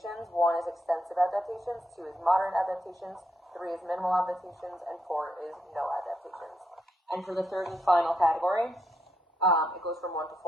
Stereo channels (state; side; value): normal; both; correlation 0.80